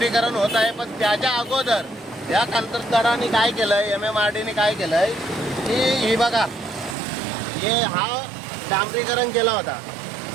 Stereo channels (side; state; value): left; drops out; at 7.0 s